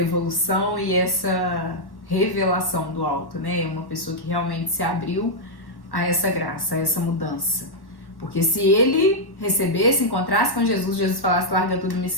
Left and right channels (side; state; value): right; late; 1.1 ms